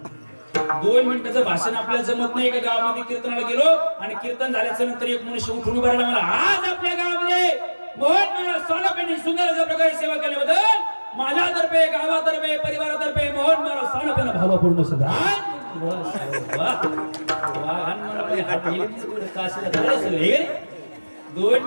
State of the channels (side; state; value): both; inverted; correlation -1.00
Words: 2 मिनिटाचं भाषण आपल्याला जमत नाही. एका गावामध्ये कीर्तनाला गेलो आणि कीर्तन झाल्याच्या नंतर एक मनुष्य उठून उभा राहिला. मला आज आपल्या गावामध्ये मोहन मला सानपेंनी सुंदर अशा प्रकारे सेवा केल्याबद्दल माझ्यातर्फे, गावातर्फे, परिवारातर्फे मोहन मला सानपेंना भावपूर्ण सुद्धा. 2